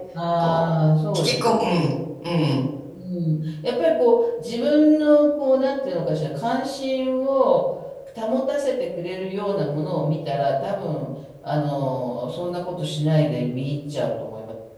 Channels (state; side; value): identical; both; correlation 1.00